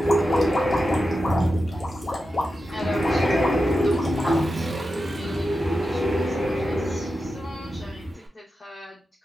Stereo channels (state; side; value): normal; both; correlation 0.90